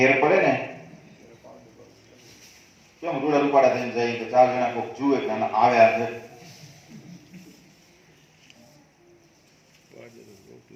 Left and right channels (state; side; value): identical; both; correlation 1.00